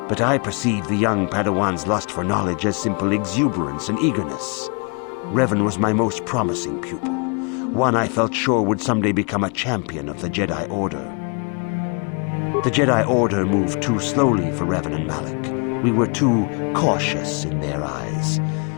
but I perceived the young Padawan's lust for knowledge as simple exuberance and eagerness. Revan was my most promising pupil, one I felt sure would someday become a champion of the Jedi Order. The Jedi Order moved too slowly for Revan and Malak. We were too cautious in their eyes.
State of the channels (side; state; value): right; quieter; 35.5 dB